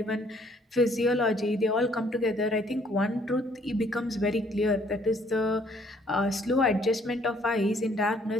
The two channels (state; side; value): normal; both; correlation 0.63